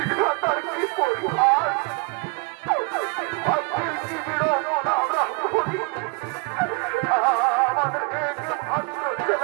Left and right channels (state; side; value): quieter; left; 30.9 dB